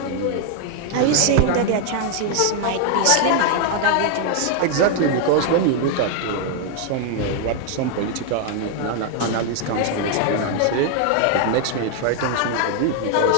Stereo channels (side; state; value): both; different; correlation 0.00